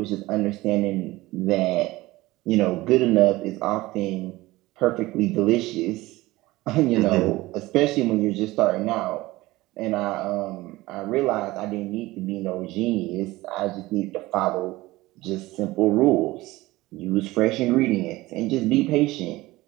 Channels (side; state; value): left; quieter; 19.0 dB